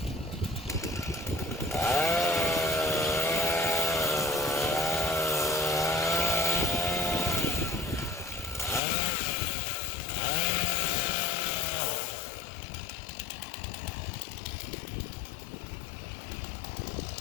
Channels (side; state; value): right; drops out; at 8.8 s